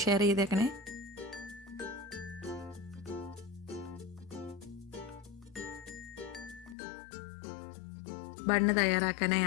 ഷെയർ ചെയ്തേക്കണേ. ബണ്ണ് തയ്യാറാക്കാനായി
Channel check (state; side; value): drops out; right; at 6.8 s